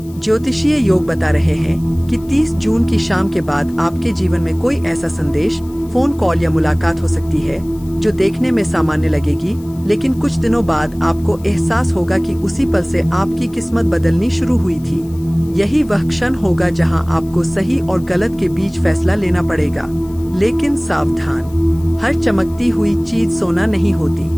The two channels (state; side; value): noise; left; hiss, 25 dB below the sound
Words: ज्योतिषीय योग बता रहे हैं कि 30 जून की शाम के बाद आपके जीवन में कोई ऐसा संदेश, फोन कॉल या मुलाकात हो सकती है जो देखने में सामान्य लगेगी, लेकिन कुछ दिनों बाद आपको एहसास होगा कि उसी पल से आपकी किस्मत बदलनी शुरू हुई थी। यही वह क्षण होगा जहां आपको सही और गलत के बीच फैसला लेना पड़ेगा। लेकिन सावधान, हर चमकती हुई चीज सोना नहीं